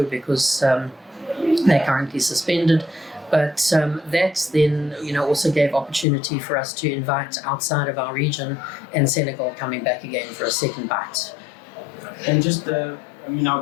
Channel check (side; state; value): right; drops out; at 6.1 s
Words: because they're currently suspended. But that then, also gave opportunity for us to invite outside of our region, and Senegal coming back again for a second bite. And just,